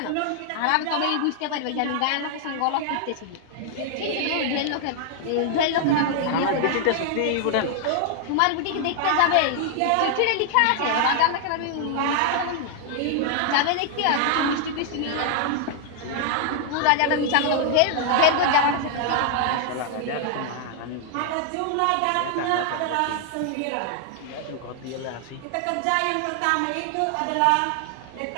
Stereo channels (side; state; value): both; different; correlation 0.00